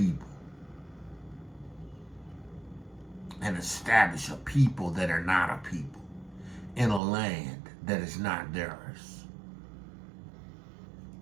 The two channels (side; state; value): left; drops out; at 7.0 s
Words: and establish a people that are not a people in a land that is not theirs.